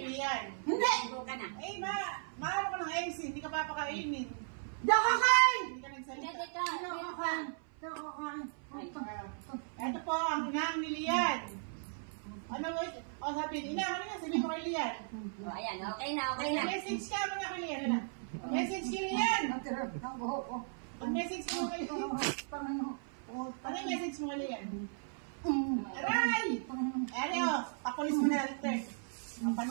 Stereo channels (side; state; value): left; silent; 53 dB below the other